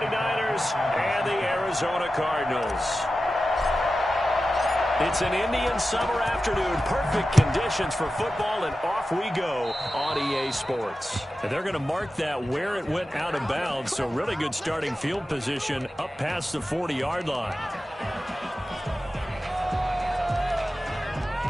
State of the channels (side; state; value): both; normal; correlation 0.93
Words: and the Arizona Cardinals. It's an Indian summer afternoon. Perfect conditions for football, and off we go on EA Sports. And they're going to mark that where it went out of bounds, so really good starting field position up past the 40-yard line.